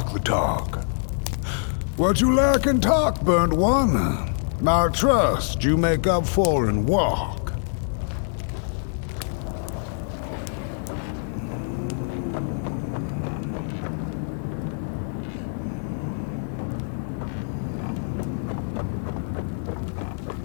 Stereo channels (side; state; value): right; silent; 59 dB below the other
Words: the talk. What you lack in talk, burnt one, I trust you make up for in walk.